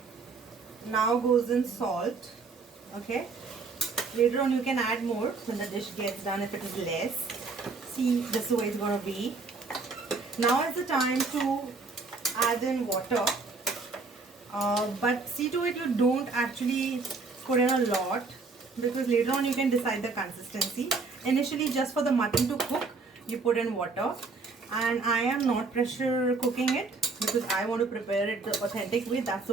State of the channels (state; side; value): quieter; left; 4.2 dB